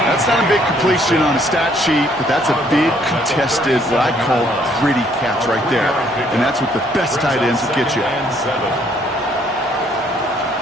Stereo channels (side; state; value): both; normal; correlation 0.65